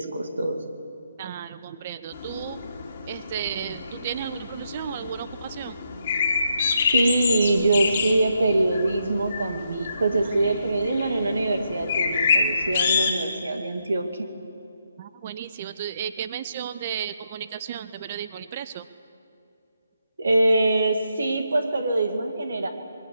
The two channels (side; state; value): both; inverted; correlation -0.79